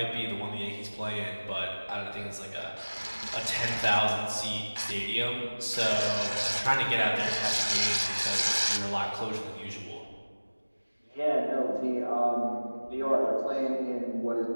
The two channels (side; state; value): both; inverted; correlation -1.00